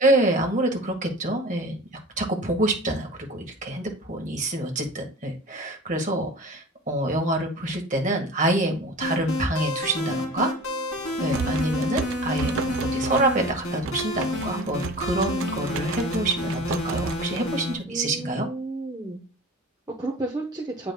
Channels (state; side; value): normal; both; correlation 0.39